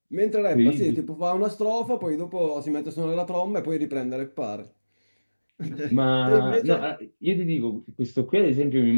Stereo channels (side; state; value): both; inverted; correlation -1.00